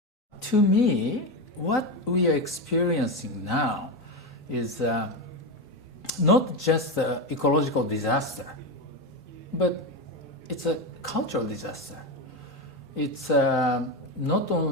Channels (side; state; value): both; normal; correlation 0.14